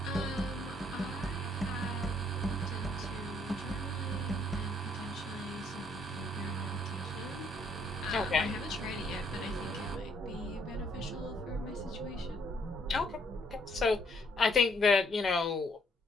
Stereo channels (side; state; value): both; normal; correlation 0.68